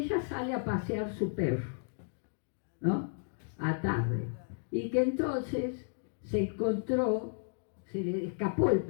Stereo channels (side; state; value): right; silent; digital silence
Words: ella sale a pasear su perro, ¿no?, a tarde, y que entonces se le escapó el